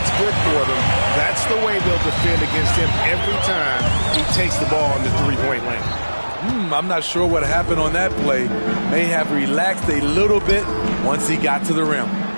good for them, that's the way they'll defend against him every time he takes the ball in the 3-point lane. I'm not sure what happened on that play. May have relaxed a little bit once he got to the rim.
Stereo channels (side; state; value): both; inverted; correlation -1.00